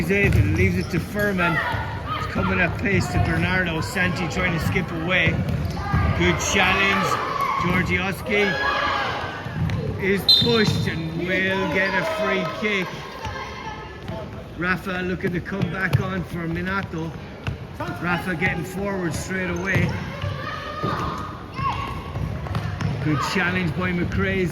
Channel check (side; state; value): both; identical; correlation 1.00